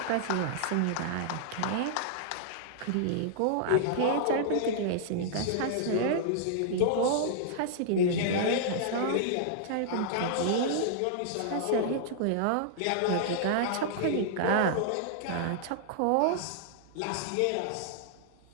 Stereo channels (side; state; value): both; different; correlation -0.01